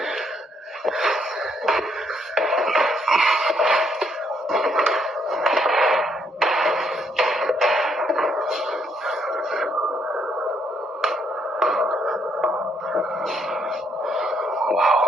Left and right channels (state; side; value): normal; both; correlation 0.71